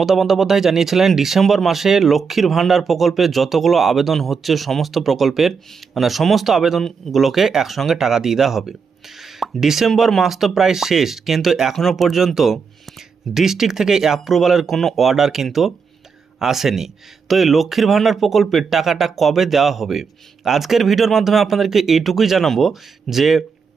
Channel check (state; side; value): quieter; left; 5.6 dB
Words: বন্দ্যোপাধ্যায় জানিয়েছিলেন ডিসেম্বর মাসে লক্ষ্মীর ভাণ্ডার প্রকল্পে যতগুলো আবেদন হচ্ছে সমস্ত প্রকল্পের সমস্ত আবেদনগুলোকে একসঙ্গে টাকা দিয়ে দেওয়া হবে। ডিসেম্বর মাস তো প্রায় শেষ, কিন্তু এখনও পর্যন্ত ডিস্ট্রিক্ট থেকে অ্যাপ্রুভালের কোনো অর্ডার কিন্তু আসেনি। তো এই লক্ষ্মীর ভাণ্ডার প্রকল্পের টাকাটা কবে দেওয়া হবে, আজকের ভিডিওর মাধ্যমে আপনাদেরকে এইটুকুই জানাবো যে